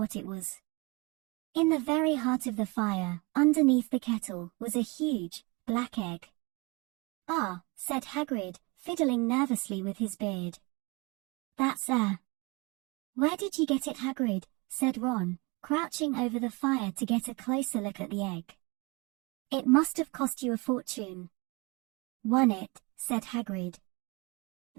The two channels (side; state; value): left; quieter; 27.1 dB